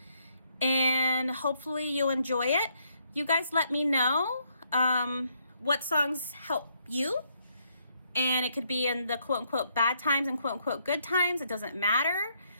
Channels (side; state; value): both; inverted; correlation -0.72